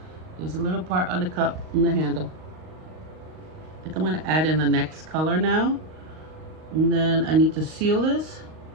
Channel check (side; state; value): left; late; 38 ms